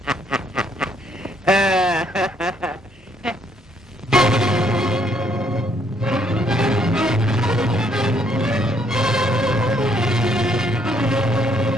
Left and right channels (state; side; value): normal; both; correlation 0.69